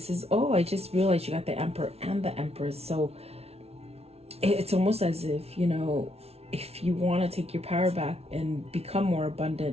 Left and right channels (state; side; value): late; left; 0.30 ms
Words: is, I just realized you got the Emperor and the Empress. So it's almost as if, if you want to take your power back and become more